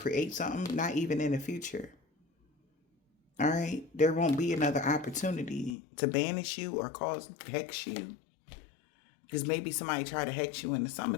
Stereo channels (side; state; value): right; drops out; at 5.8 s